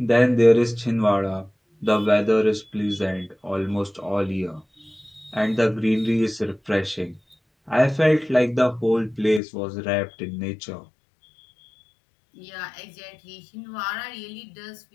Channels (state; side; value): drops out; right; at 9.4 s